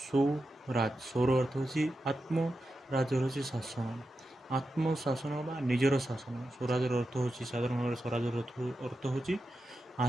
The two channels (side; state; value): both; normal; correlation 0.89